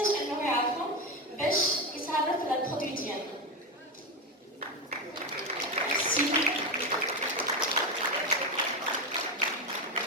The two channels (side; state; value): both; normal; correlation 0.13